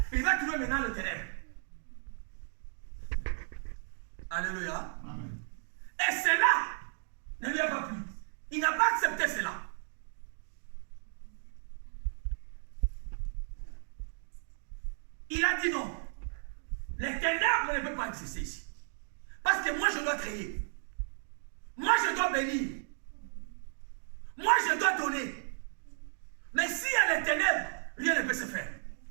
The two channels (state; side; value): silent; left; digital silence